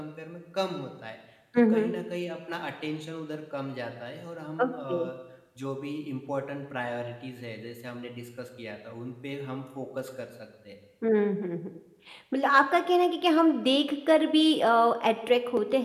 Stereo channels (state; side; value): identical; both; correlation 1.00